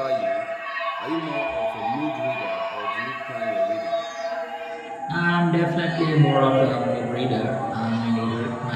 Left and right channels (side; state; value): both; identical; correlation 1.00